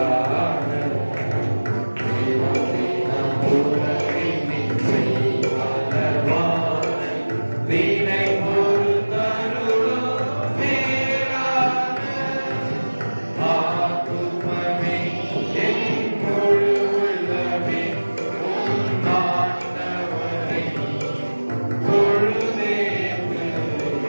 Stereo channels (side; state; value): both; inverted; correlation -1.00